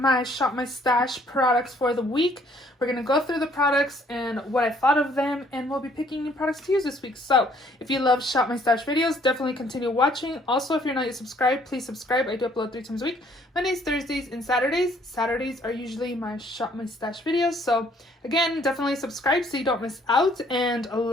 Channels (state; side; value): normal; both; correlation 0.62